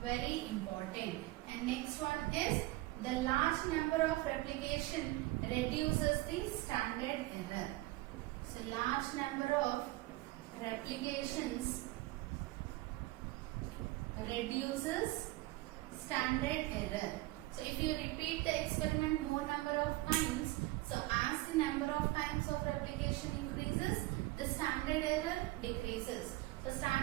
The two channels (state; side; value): quieter; left; 19.2 dB